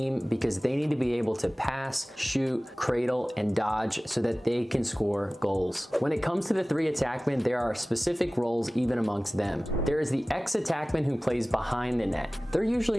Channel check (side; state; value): both; normal; correlation 0.98